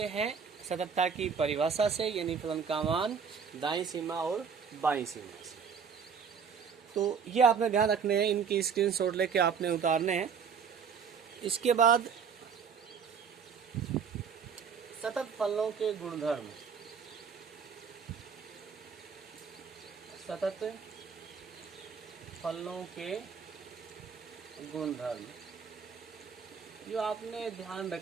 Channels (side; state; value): left; quieter; 6.4 dB